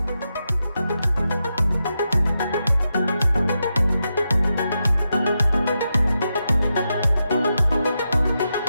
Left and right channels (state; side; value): inverted; both; correlation -0.87